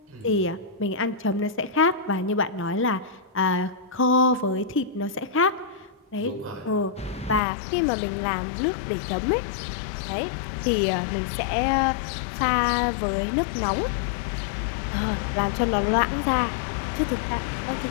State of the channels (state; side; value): drops out; right; at 7.4 s